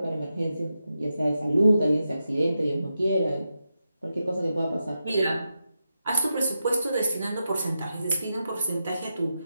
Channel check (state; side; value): inverted; both; correlation -0.88